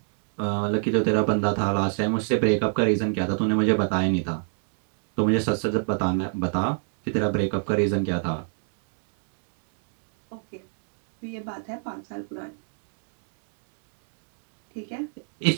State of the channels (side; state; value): left; silent; digital silence